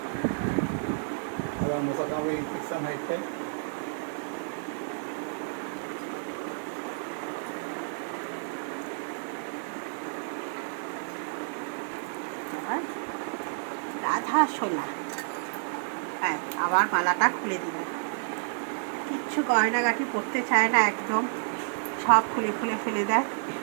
রাধা সোনা, হ্যাঁ আবার মালাটা খুলে দিল। কিচ্ছু গয়নাগাটি পরতে চায় না, একদম সব খুলে খুলে ফেলে দেয়।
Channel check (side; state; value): left; silent; 58 dB below the other